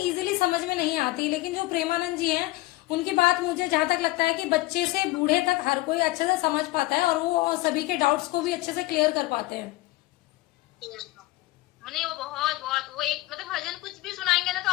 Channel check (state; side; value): quieter; right; 19.4 dB